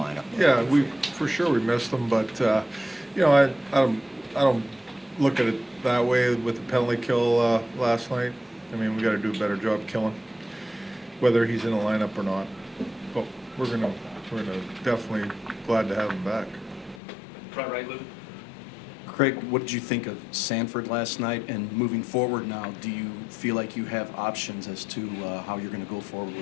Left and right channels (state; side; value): drops out; right; at 17.0 s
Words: Yeah, for sure we missed him, but I don't look at it that way with the penalty kill last night. I mean, we got to do a better job killing, whether he's in the lineup or not. But we're gonna definitely glad to have him back. Front right, Lou. Craig, what did you think of Sanford last night? And moving forward now, do you feel like you have options as to how you're going to go forward